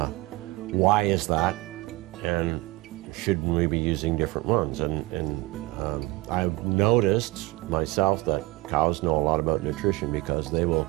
is that? And shouldn't we be using different ones? And I've noticed myself that cows know a lot about nutrition, because they'll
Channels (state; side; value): quieter; left; 20.8 dB